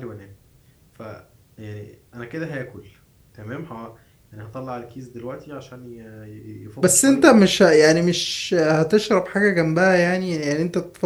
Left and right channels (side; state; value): both; identical; correlation 1.00